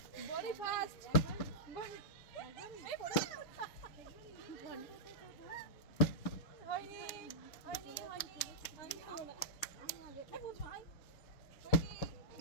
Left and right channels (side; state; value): right; late; 6.6 ms